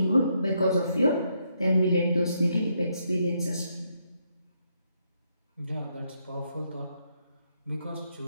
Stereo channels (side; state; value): both; inverted; correlation -0.77